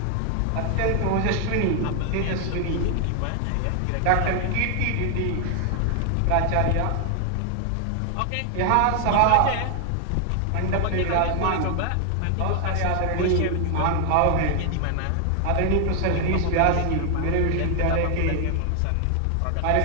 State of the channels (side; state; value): both; different; correlation 0.00